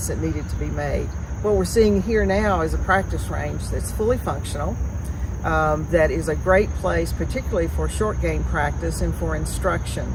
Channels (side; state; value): both; identical; correlation 1.00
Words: that needed to be made. What we're seeing here now is a practice range that's fully functional, that is a great place, particularly for short game practice and for instruction.